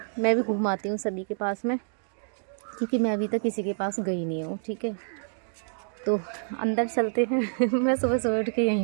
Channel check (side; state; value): left; silent; digital silence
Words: मैं भी घुमाती हूँ सभी के पास में, क्योंकि मैं अभी तक किसी के पास गई नहीं हूँ। ठीक है, तो अंदर चलते हैं। मैं सुबह सुबह उठ के